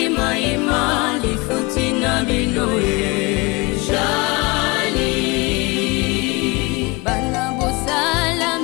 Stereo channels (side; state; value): right; quieter; 25.8 dB